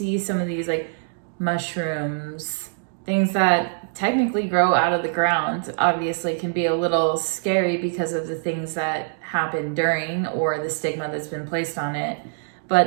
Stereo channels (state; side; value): silent; left; digital silence